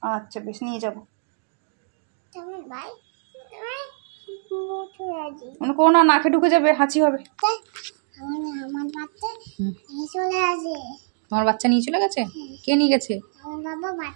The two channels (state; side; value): silent; left; 62 dB below the other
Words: আচ্ছা বেশ, নিয়ে যাবো। মনে করো না, নাকে ঢুকে যাবে, হাঁচি হবে। আমার বাচ্চা নিয়ে চলে আসে। তোমার বাচ্চা নিয়ে চলে গেছে? কে নিয়ে গেছে? আমার বাবা